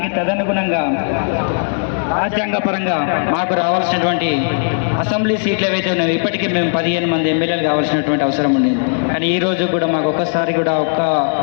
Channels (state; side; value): silent; right; digital silence